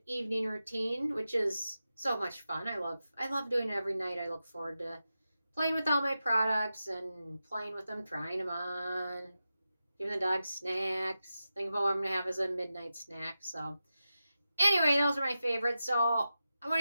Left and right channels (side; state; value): both; inverted; correlation -0.91